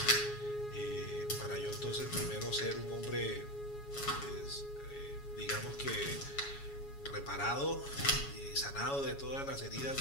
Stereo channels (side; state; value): right; late; 7.2 ms